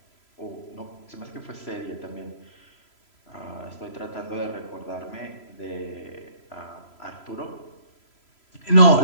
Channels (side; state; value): right; late; 3.0 ms